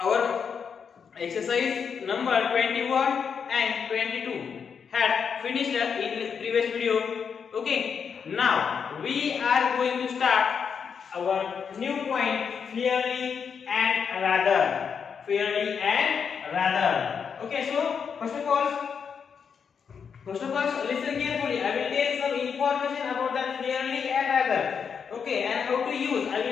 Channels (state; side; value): quieter; right; 6.6 dB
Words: exercise number 21 and 22 had finished in previous video. Okay, now we are going to start our new point, fairly and rather. Fairly and rather. Okay, so first of all, listen carefully. I will tell some information about that fairly and rather. Okay, and how to use. I